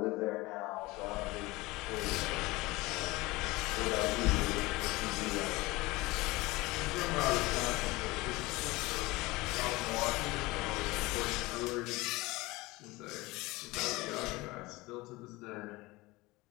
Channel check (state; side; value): quieter; right; 21.4 dB